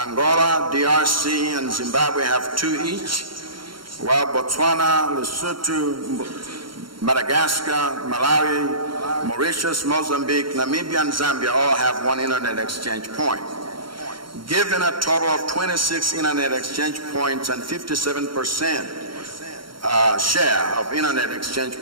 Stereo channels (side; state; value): left; late; 0.73 ms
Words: DRC, and Zimbabwe have 2 each, while Botswana, Lesotho, Madagascar, Malawi, Mauritius, Mozambique, Namibia, and Zambia all have 1 internet exchange point, giving a total of 26 internet exchange points and 57% share of internet exchange